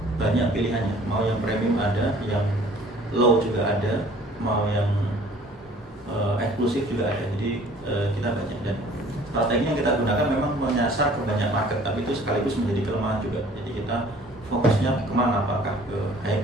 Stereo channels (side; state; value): both; normal; correlation 0.52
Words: banyak pilihannya. Mau yang premium ada, yang low juga ada, mau yang eksklusif juga ada. Jadi kita banyak, dan strategi yang kita gunakan memang menyasar ke banyak market, tapi itu sekaligus menjadi kelemahan juga. Jadi kita fokusnya kemana, apakah ke